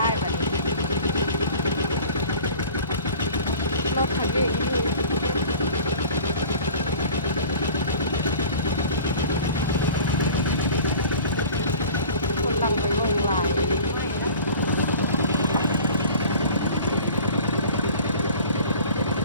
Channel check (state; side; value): inverted; both; correlation -0.43